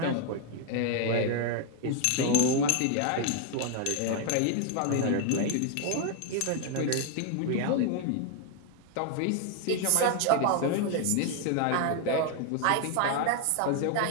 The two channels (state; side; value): different; both; correlation 0.00